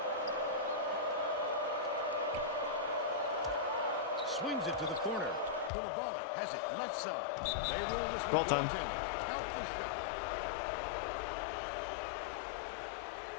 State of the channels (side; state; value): right; drops out; at 5.7 s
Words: Swings it to the corner. Koulibaly has it left side. They roll this one. Roll time. Count the shot.